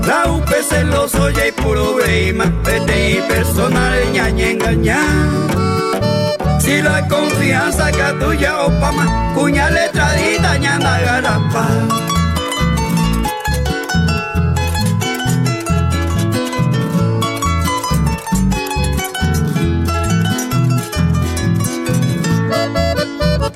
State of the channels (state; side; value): identical; both; correlation 1.00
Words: La UP celoso y puro breima, PTI personal ñañe engañar. Si la confianza que tuya o pama, cuña letradita ñanda garapa.